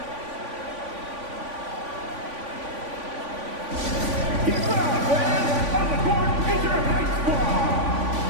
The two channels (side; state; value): left; late; 3.5 ms